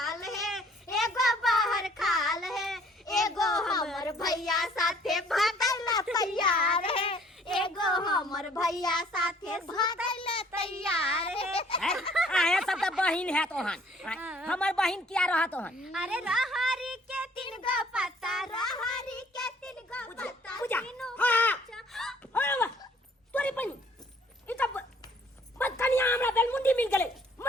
है एगो बाहर खाल है एगो हमर भैया साथे भागल तैयार है एगो हमर भैया साथे भागल तैयार है आया सब तो बहिन है तोहन हमर बहिन क्या रहा तोहन अरे रहरी के तीन गो पत्ता रहरी के तीन गो पत्ता पूजा तीनों हां तोरी बहिन ई सब बदकनिया हमरा बेलमुंडी मिल गेले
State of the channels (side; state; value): both; normal; correlation 0.59